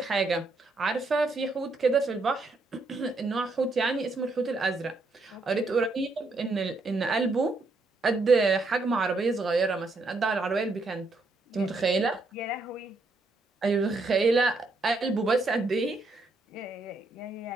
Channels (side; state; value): left; quieter; 3.3 dB